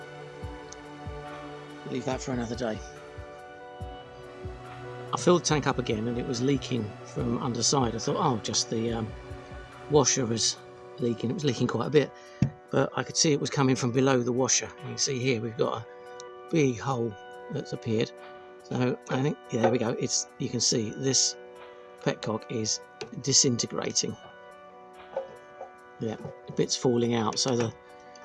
Leave that for another day. I filled the tank up again and it was leaking from underside. I thought, oh, just the washer was leaking. It was leaking quite a bit, but I could see it was coming from below the washer. You can see here we've got a big hole that's appeared. So I think, yeah, there we go. You can see this petcock is disintegrating. Yeah, the bit's falling out. So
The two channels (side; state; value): both; identical; correlation 1.00